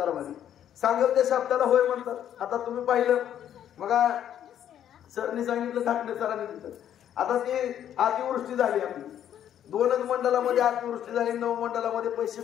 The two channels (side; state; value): right; quieter; 10.3 dB